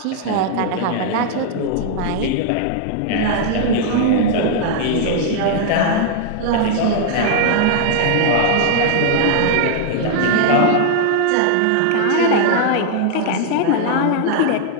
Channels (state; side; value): different; both; correlation 0.00